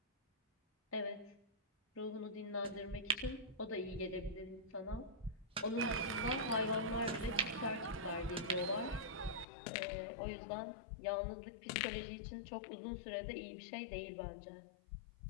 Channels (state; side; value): drops out; right; at 9.5 s